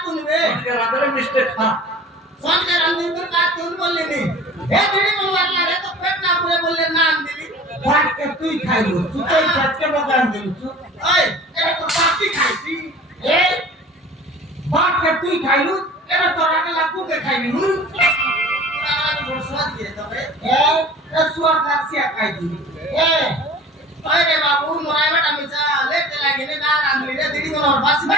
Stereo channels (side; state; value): both; normal; correlation 0.43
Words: তুলবে সবে রাতের মিস্টেক হ্যাঁ সবে রঞ্জিত তা তুল বললি নি এ দিদি বলবার লাগে তো পেট না পুরে বললে নাম দিলি ভাত কে তুই খাইবো তুই তো ভাতকে বকান দিলি তুই ওই এটা তো পাতি খাইছি এ ভাত কে তুই খাইলু এটা তোরা কে লাগু কে খাইবি হুম তোরা বড় স্বাদ দিয়ে তবে এ সুয়ার কাছিয়া খাই দিবি এ ওই রে বাবু মোরাই বাটা মিছা লেট লাগিনে না রান্ধলি রে দিদি আমার বাসি